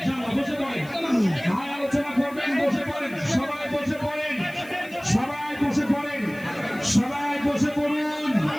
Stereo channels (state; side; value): noise; left; hiss, 23 dB below the sound